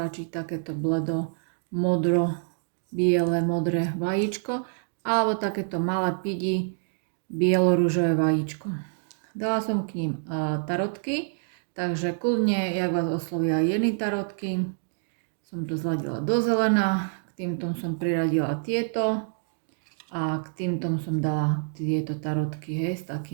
takéto bledo, modro, biele, modré vajíčko, alebo takéto malé pidi, bielo-ružové vajíčko. Dala som k ním tarotky. Takže kľudne, jak vás oslovia jedny tarotky, som to zladila do zelená, k týmto som priradila tieto a k týmto som dala tieto tarotky, hej, s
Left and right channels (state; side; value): silent; left; digital silence